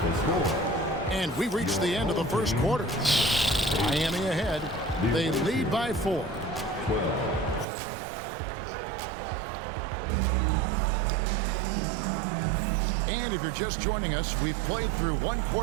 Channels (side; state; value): left; drops out; at 7.7 s